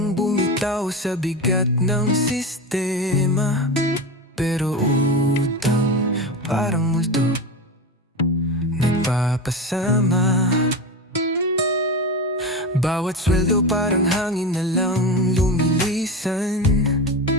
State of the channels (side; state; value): both; normal; correlation 0.23